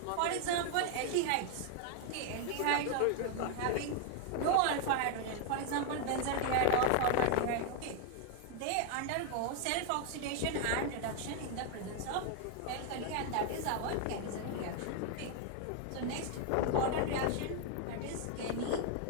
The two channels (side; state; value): both; different; correlation 0.00